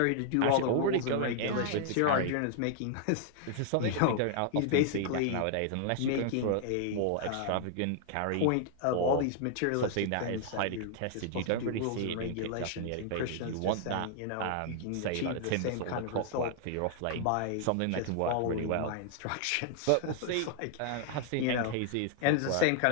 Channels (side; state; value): both; different; correlation -0.01